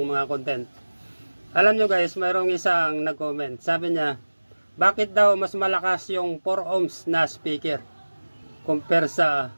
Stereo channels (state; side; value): inverted; both; correlation -1.00